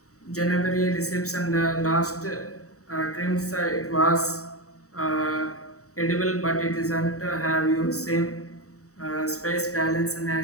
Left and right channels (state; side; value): late; right; 0.65 ms